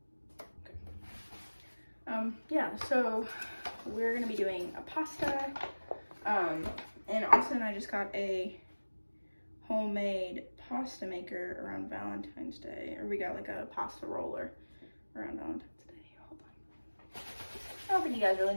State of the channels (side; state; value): both; inverted; correlation -1.00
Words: yeah, so we're gonna be doing a pasta, and Austin and I just got a homemade pasta maker around Valentine's Day, or we got like a pasta roller around Valentine's Day. Hold on. I don't think you guys really